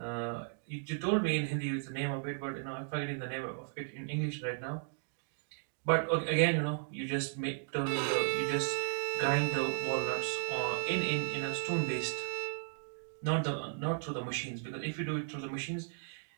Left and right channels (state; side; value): silent; left; digital silence